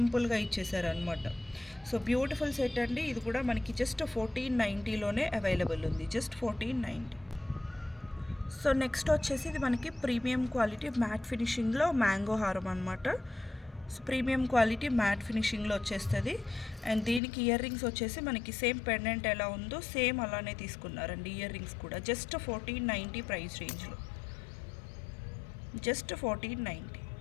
ఇచ్చేసారు అనమాట. సో బ్యూటిఫుల్ సెట్ అండి. ఇది కూడా మనకి జస్ట్ 1490లోనే అవైలబుల్ ఉంది. జస్ట్ 1490. సో నెక్స్ట్ వచ్చేసి ఇది మనకి ప్రీమియం క్వాలిటీ మ్యాట్ ఫినిషింగ్లో మ్యాంగో హారం అనమాట. సో ప్రీమియం క్వాలిటీ మ్యాట్ ఫినిషింగ్లో వచ్చేస్తుంది. అండ్ దీనికి ఇయర్ రింగ్స్ వచ్చేసి మనకి సేమ్ పెండెంట్ ఎలా ఉందో సేమ్ అలానే తీసుకున్నారండి. ఇయర్ రింగ్స్ కూడా జస్ట్ 1490 ప్రైస్ రేంజ్లో, జస్ట్ 1490.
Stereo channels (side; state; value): right; drops out; at 17.2 s